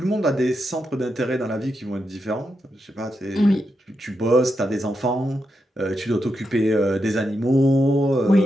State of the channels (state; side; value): normal; both; correlation 0.85